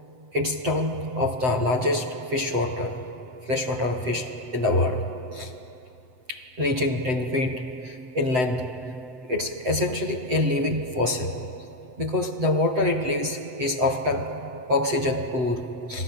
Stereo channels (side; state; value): left; late; 7.9 ms